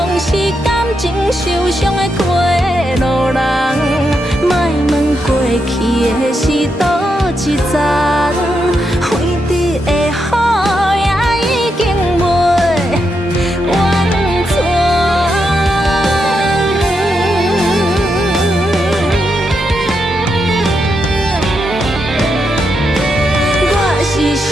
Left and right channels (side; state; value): both; normal; correlation 0.83